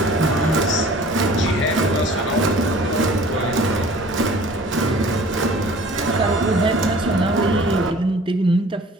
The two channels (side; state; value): both; normal; correlation 0.48